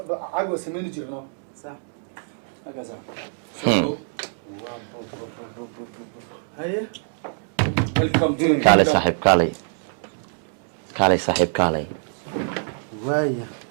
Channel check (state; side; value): silent; left; digital silence